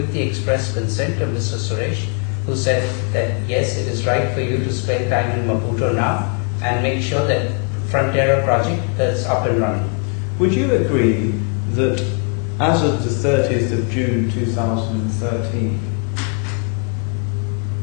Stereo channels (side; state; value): right; quieter; 36.0 dB